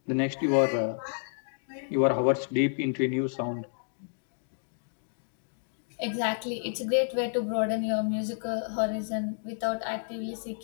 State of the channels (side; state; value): right; silent; digital silence